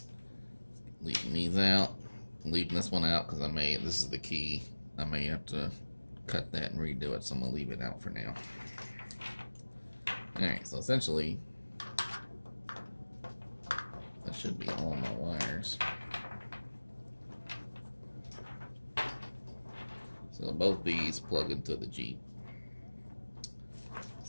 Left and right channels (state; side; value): inverted; both; correlation -1.00